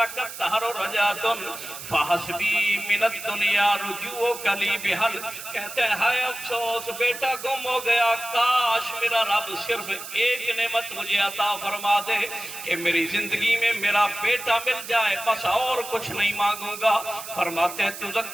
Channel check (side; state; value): right; noise; hiss, 11 dB below the sound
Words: تہر رجعۃ فحسبی من الدنیا رجوع کلی بحل, کہتے ہیں ہائے افسوس بیٹا گم ہو گیا, کاش میرا رب صرف ایک نعمت مجھے عطا فرما دے کہ میری زندگی میں میرا بیٹا مل جائے, بس اور کچھ نہیں مانگوں گا. فرماتے ہیں